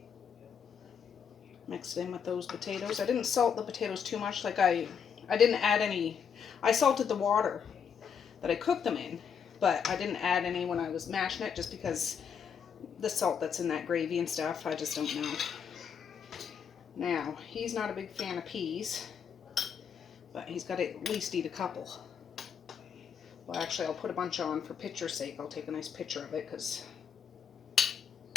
Mix it in with those potatoes. I didn't salt the potatoes too much. Like I didn't add any. I salted the water that I cooked them in, but I didn't add any when I was mashing it just because the salt that's in that gravy and stuff, I just don't know. Now, he's not a big fan of peas, but he's got to at least eat a couple. Well, actually, I'll put a bunch on for picture's sake. I'll take a nice picture of it because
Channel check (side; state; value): right; quieter; 7.2 dB